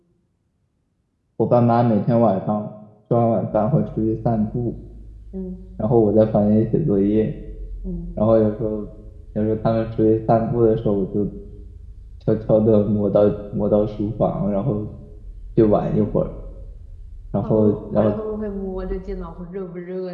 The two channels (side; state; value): both; identical; correlation 1.00